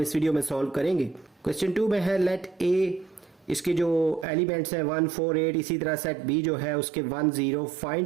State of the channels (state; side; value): drops out; left; at 4.2 s